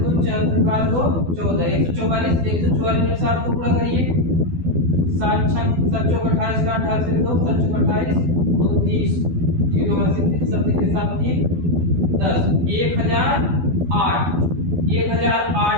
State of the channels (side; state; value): left; late; 12 ms